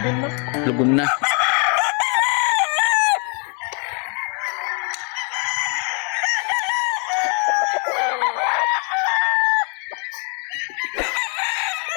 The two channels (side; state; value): right; quieter; 37.7 dB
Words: na. Lugon na.